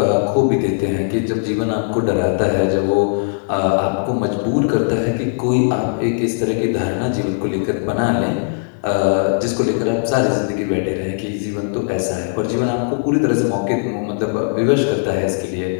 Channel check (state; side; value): silent; right; digital silence